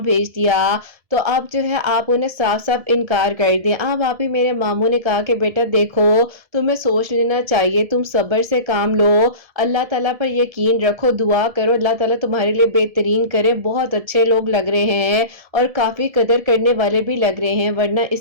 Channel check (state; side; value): late; left; 1.7 ms